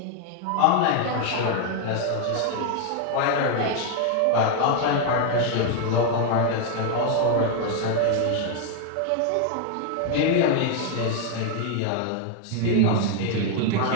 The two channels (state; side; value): different; both; correlation 0.00